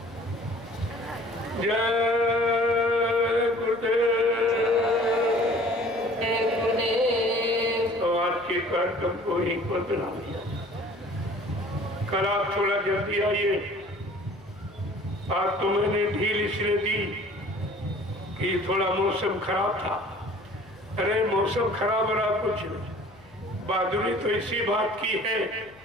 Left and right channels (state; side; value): noise; left; hum, 25 dB below the sound